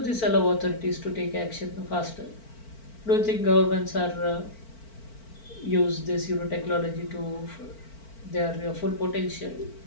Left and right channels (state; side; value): late; right; 4.5 ms